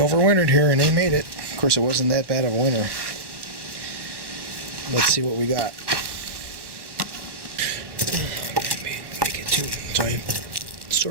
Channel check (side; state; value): left; late; 1.1 ms